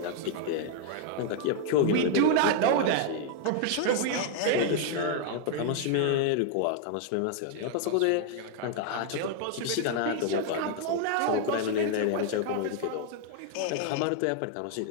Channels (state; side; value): different; both; correlation 0.00